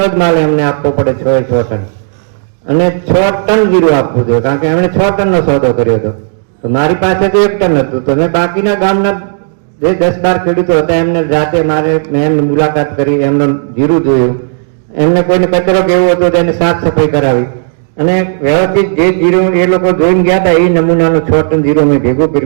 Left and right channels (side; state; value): left; silent; digital silence